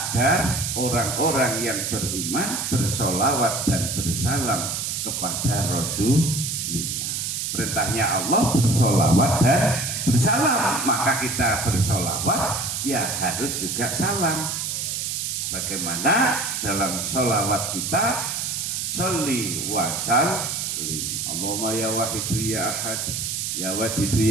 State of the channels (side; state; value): right; noise; hiss, 2 dB below the sound